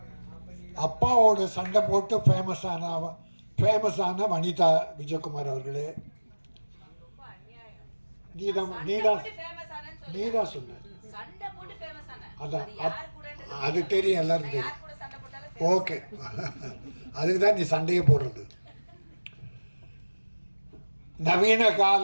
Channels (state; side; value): inverted; both; correlation -1.00